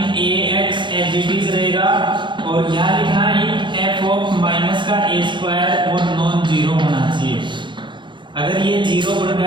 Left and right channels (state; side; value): late; left; 0.23 ms